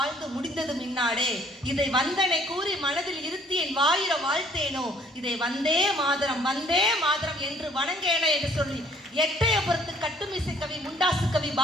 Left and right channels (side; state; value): both; normal; correlation 0.59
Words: முடிந்தது மின்னாடே, இதை வந்தனை கூறி மனதில் இருத்தி என் வாயிர வாழ்த்தேனோ, இதை வந்தே மாதரம் என்று வணங்கேனே என்று சொல்லி எட்டயபுரத்து கட்டுமிசை கவி முண்டாசு கவி